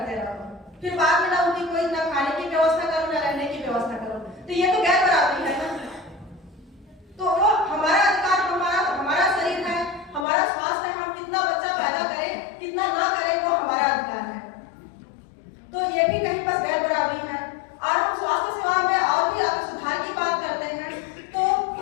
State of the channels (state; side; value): drops out; right; at 10.2 s